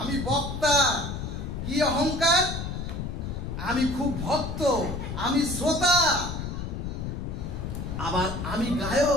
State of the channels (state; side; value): noise; left; rumble, 5 dB below the sound